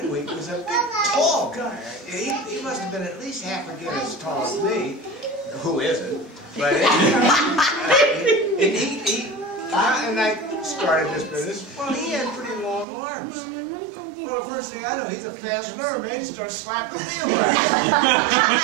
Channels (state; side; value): drops out; left; at 12.9 s